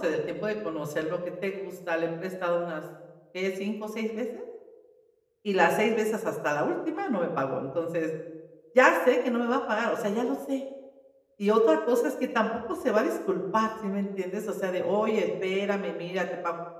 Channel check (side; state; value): both; identical; correlation 1.00